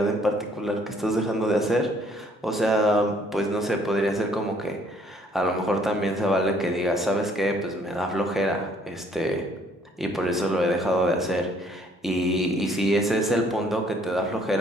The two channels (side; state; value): both; normal; correlation 0.62